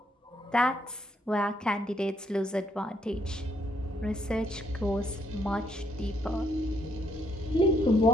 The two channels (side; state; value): both; normal; correlation 0.72